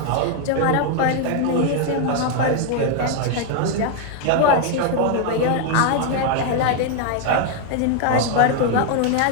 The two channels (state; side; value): different; both; correlation 0.00